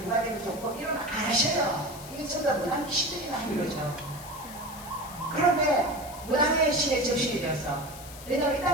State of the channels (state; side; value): noise; left; hiss, 15 dB below the sound